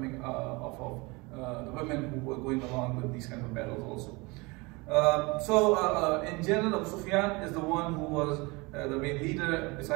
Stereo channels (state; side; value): quieter; left; 25.8 dB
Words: off of the women who were going along with these kind of battles also. In general, Abu Sufyan is the one who was the main leader.